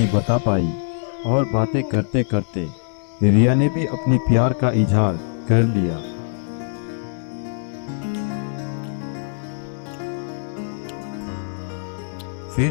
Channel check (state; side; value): silent; right; digital silence